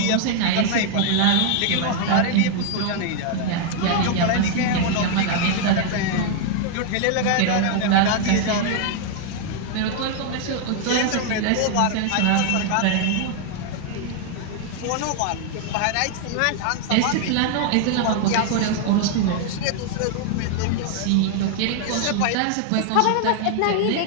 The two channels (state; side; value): different; both; correlation 0.00